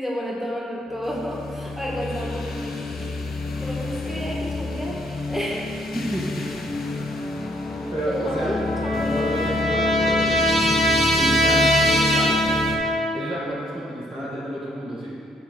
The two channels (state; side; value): normal; both; correlation 0.68